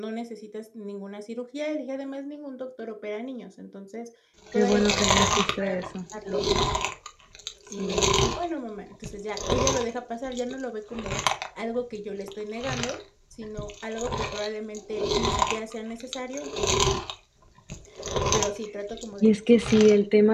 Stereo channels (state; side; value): identical; both; correlation 1.00